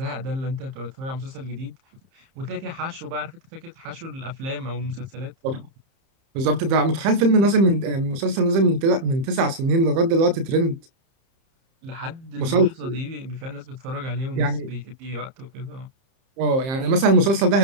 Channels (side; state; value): left; late; 30 ms